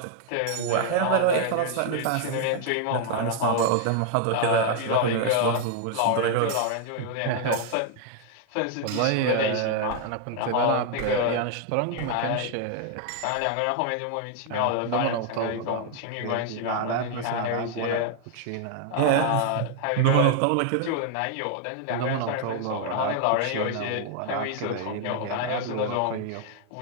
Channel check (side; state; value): both; different; correlation 0.00